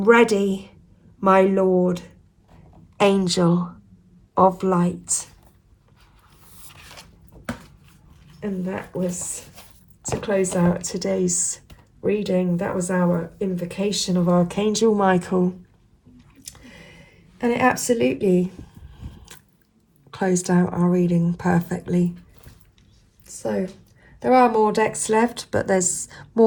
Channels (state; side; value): identical; both; correlation 1.00